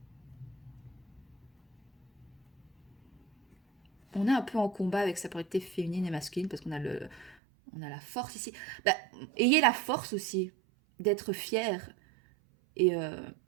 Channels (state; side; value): drops out; left; at 7.4 s